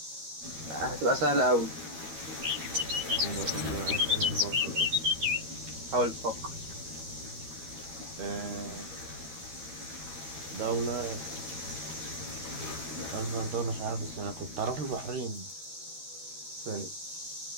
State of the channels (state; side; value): late; left; 13 ms